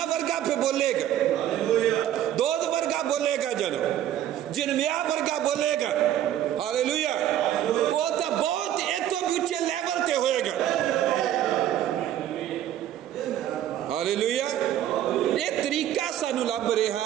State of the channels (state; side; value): quieter; left; 11.5 dB